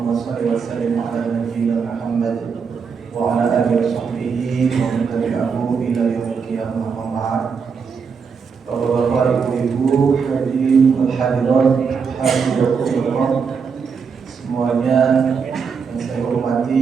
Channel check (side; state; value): left; quieter; 5.9 dB